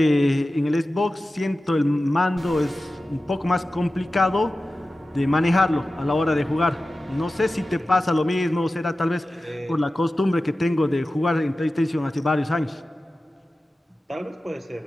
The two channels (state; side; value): normal; both; correlation 0.95